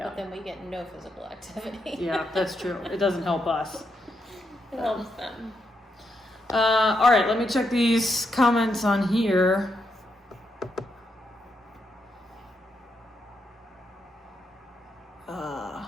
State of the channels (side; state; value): both; normal; correlation 0.81